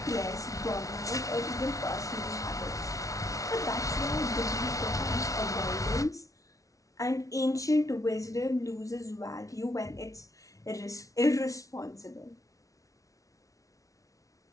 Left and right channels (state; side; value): late; right; 0.17 ms